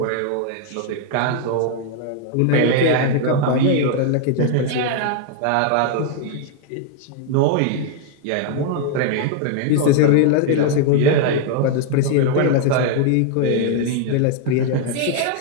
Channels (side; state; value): both; different; correlation 0.00